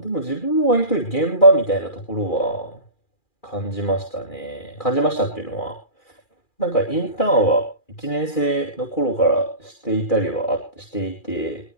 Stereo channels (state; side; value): late; right; 2.4 ms